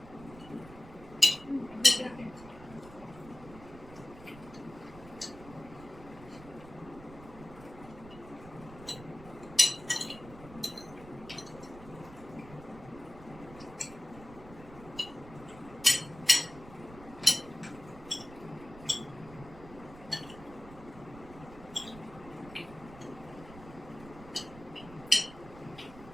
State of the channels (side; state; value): right; noise; rumble, 17 dB below the sound